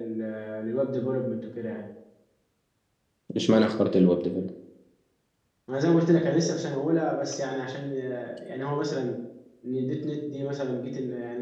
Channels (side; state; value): both; identical; correlation 1.00